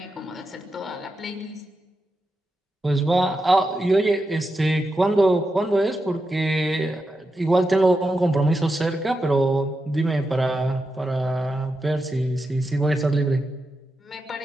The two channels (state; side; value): normal; both; correlation 0.88